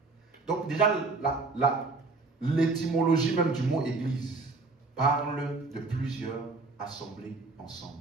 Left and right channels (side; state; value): left; quieter; 3.8 dB